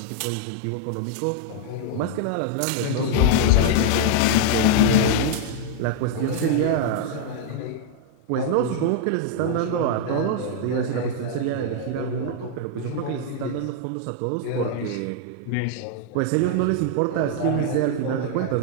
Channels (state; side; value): different; both; correlation 0.00